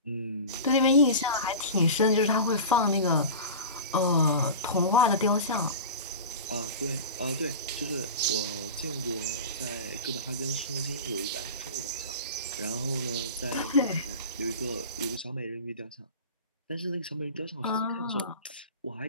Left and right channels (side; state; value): both; inverted; correlation -0.30